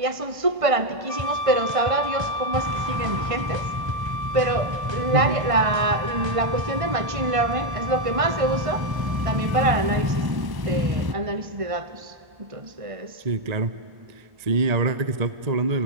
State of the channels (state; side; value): late; left; 1.5 ms